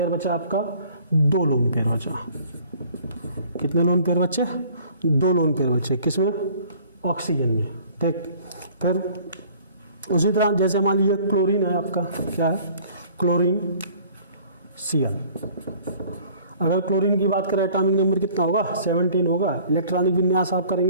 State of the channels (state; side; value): inverted; both; correlation -0.53